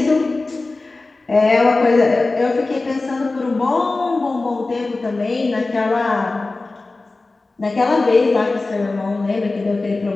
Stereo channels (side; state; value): right; quieter; 3.4 dB